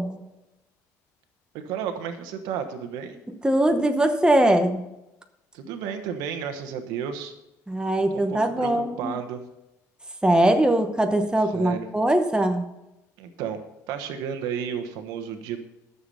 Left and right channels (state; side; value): normal; both; correlation 0.83